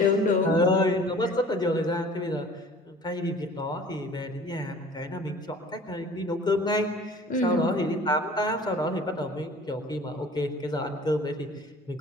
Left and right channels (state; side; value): normal; both; correlation 0.46